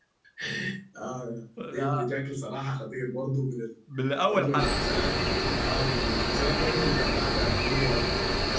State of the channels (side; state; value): both; identical; correlation 1.00